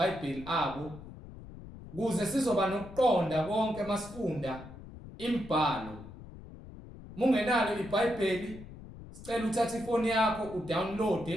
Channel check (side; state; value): left; noise; rumble, 15 dB below the sound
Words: abo ukuze sizoba nokuqonda konke masifunda imibhalo. Mungenalo iBhayibheli, sicela uthathe ifoni yakho